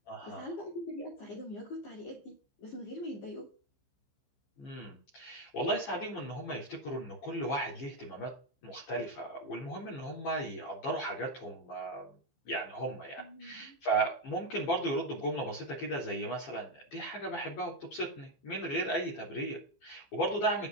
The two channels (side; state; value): right; late; 15 ms